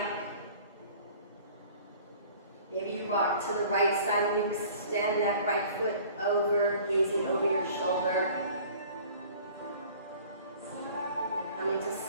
Maybe you rock to the right side and you extend that right foot over, gazing over your shoulder. Coming to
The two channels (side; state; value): both; inverted; correlation -0.48